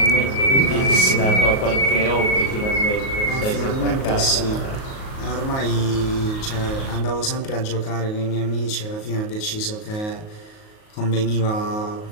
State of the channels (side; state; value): right; late; 38 ms